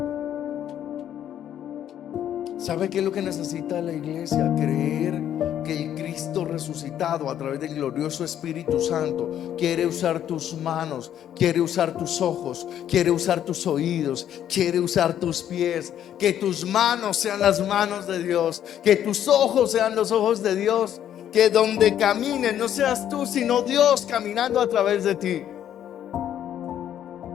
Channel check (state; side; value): quieter; right; 10.5 dB